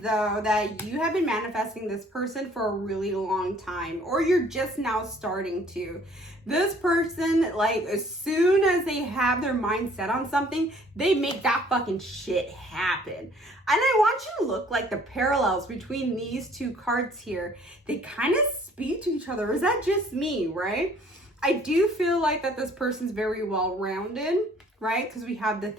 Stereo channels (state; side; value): normal; both; correlation 0.57